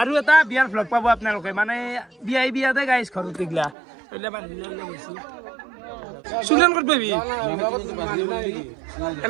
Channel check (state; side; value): drops out; left; at 3.8 s